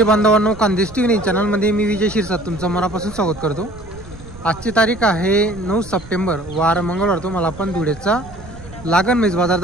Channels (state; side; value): noise; right; rumble, 17 dB below the sound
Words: बांधवांनो, खानदेश टीव्ही चॅनलमध्ये मी विजय शिरसाट तुमचं मनापासून स्वागत करतो। आजची तारीख आहे 9 सप्टेंबर, वार मंगळवार। तुम्हाला आपण धुळेचा लागण म्हैस बाजार